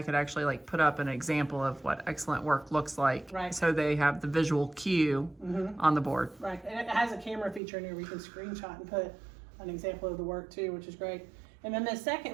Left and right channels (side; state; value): left; drops out; at 7.6 s